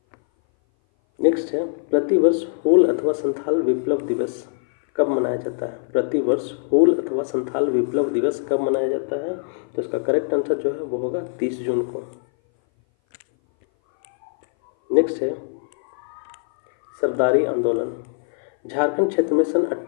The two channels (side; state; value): right; silent; 59 dB below the other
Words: नेक्स्ट है प्रतिवर्ष हूल अथवा संथाल विप्लव दिवस कब मनाया जाता है? प्रतिवर्ष हूल अथवा संथाल विप्लव दिवस कब मनाया जाता है? तो इसका करेक्ट आंसर जो है वो होगा 30 जून को। नेक्स्ट है सरदारी आंदोलन। झारखंड क्षेत्र में सन